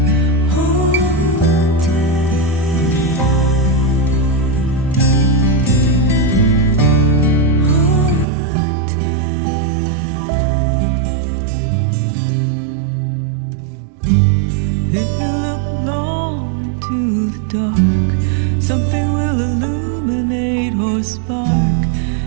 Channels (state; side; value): drops out; left; at 8.2 s